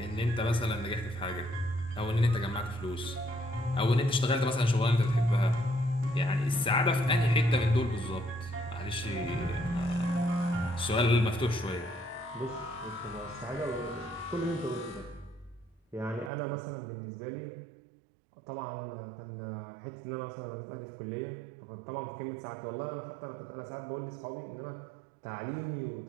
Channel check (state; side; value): drops out; left; at 16.3 s